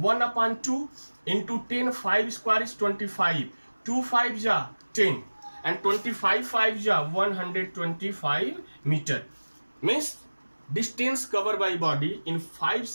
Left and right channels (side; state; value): both; inverted; correlation -1.00